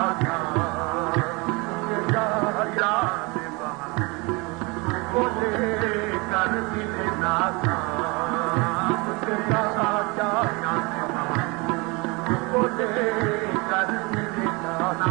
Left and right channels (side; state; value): left; quieter; 27.2 dB